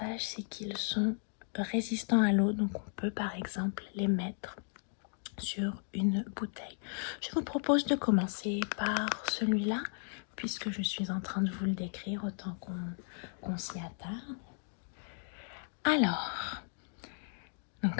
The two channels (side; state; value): right; silent; 54 dB below the other